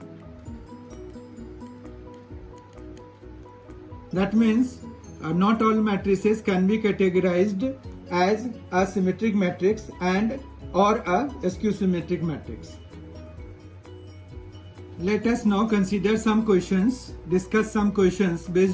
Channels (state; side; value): identical; both; correlation 1.00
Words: That means not all matrices can be categorized as a symmetric matrix and or a skew symmetric matrix. Let us now consider some questions, discuss some questions